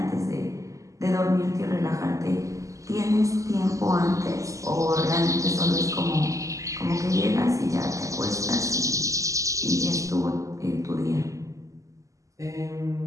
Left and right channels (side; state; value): left; late; 0.16 ms